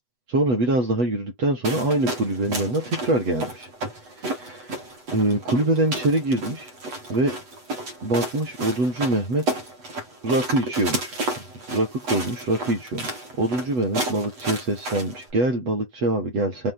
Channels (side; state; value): left; late; 8.1 ms